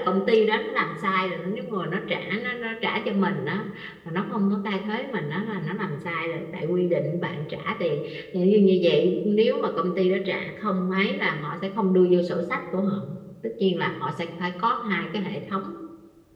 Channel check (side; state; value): both; identical; correlation 1.00